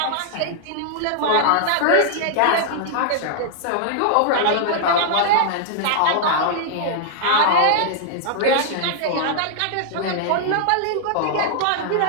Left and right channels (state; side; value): different; both; correlation -0.01